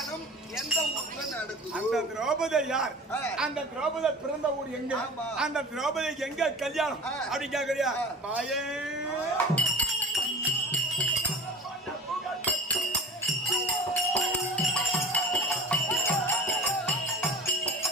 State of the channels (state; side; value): normal; both; correlation 0.38